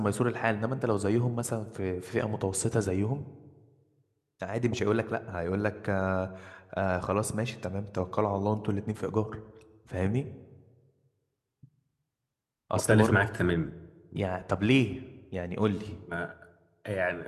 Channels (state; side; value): identical; both; correlation 1.00